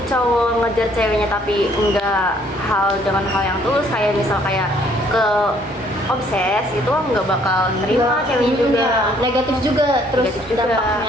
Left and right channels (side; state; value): both; normal; correlation 0.63